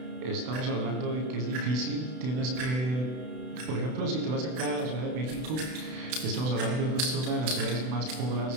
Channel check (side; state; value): left; late; 32 ms